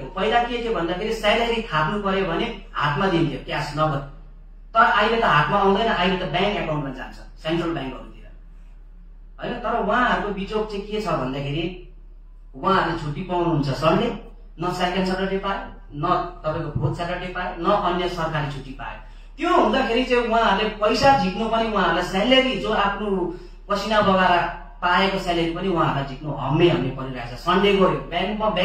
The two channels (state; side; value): identical; both; correlation 1.00